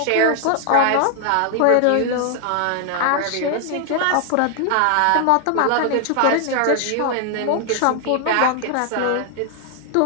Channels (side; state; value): both; different; correlation 0.00